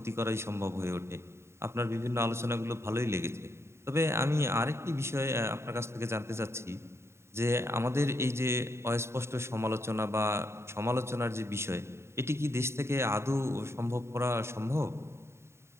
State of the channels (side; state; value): left; late; 0.13 ms